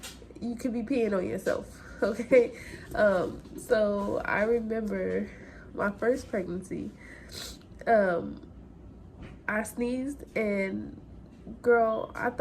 you could be peeing on yourself, okay? So I remember my first pregnancy, I sneezed, and girl, I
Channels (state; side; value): identical; both; correlation 1.00